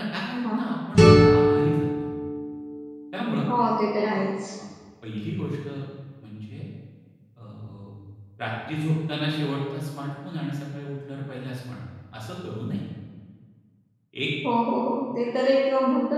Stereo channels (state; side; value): identical; both; correlation 1.00